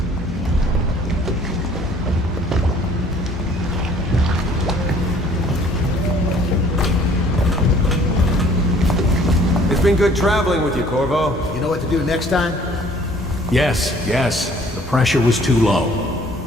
It's been good traveling with you, Corvo. You know what to do next time? Yes. The pressure was too low.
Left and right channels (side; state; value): both; normal; correlation 0.56